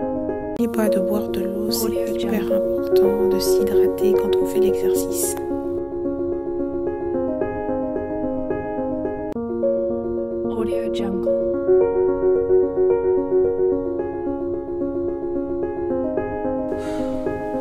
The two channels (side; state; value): both; identical; correlation 1.00